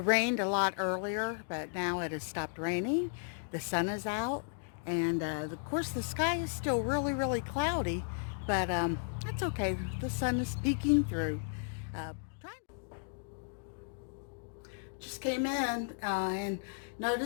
a lot earlier, but now it has stopped raining. The sun is out, and of course the sky is still really cloudy, but that's okay. The sun is peeking through. Uh, just came in and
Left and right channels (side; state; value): right; silent; digital silence